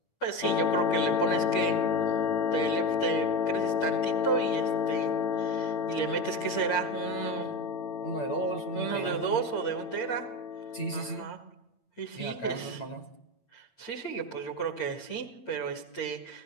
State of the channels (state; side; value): late; right; 8.7 ms